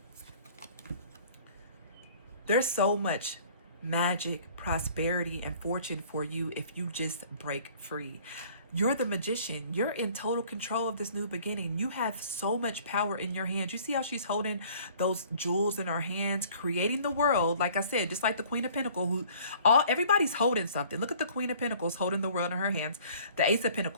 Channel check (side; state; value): both; inverted; correlation -0.53